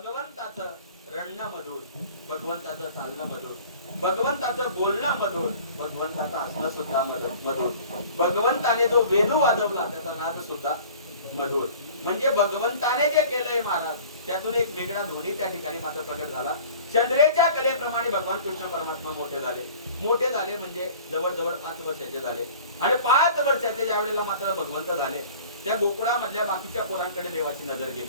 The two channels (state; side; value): inverted; both; correlation -0.46